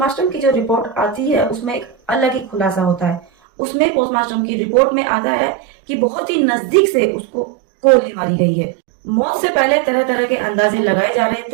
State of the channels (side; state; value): left; drops out; at 3.2 s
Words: की जो रिपोर्ट आती है उसमें एक अलग ही खुलासा होता है। उसमें पोस्टमार्टम की रिपोर्ट में आता है कि बहुत ही नजदीक से उसको गोली मारी गई है। मौत से पहले तरह तरह के अंदाजे लगाए जा रहे